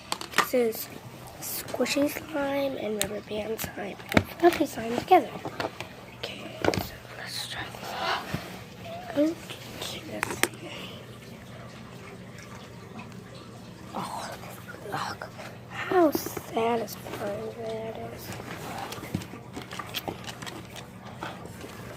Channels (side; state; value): both; identical; correlation 1.00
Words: This is squishy slime and rubber band slime and fluffy slime together. Okay, so let's try this. Oh, look how satisfying that is.